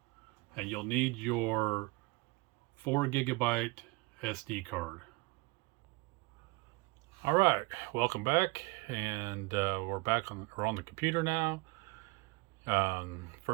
And you'll need your 4 GB SD card. All right, welcome back, and we're on the computer now.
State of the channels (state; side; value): quieter; left; 24.8 dB